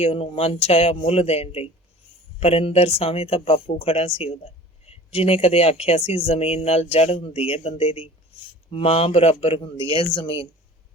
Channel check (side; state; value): both; normal; correlation 0.43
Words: ਉਹਨੂੰ ਮਨ ਚਾਹਿਆ ਮੁੱਲ ਦੇਣ ਲਈ। ਪਰ ਇੰਦਰ ਸਾਹਮਣੇ ਤਾਂ ਬਾਪੂ ਖੜਾ ਸੀ ਉਹਦਾ, ਜਿਹਨੇ ਕਦੇ ਆਖਿਆ ਸੀ ਜ਼ਮੀਨ ਨਾਲ ਜੜ ਹੁੰਦੀ ਹੈ ਬੰਦੇ ਦੀ, ਮਾਂ ਬਰਾਬਰ ਹੁੰਦੀ ਹੈ ਜ਼ਮੀਨ।